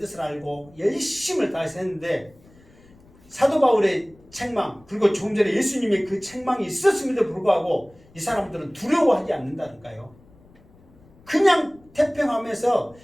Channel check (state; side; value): noise; left; rumble, 27 dB below the sound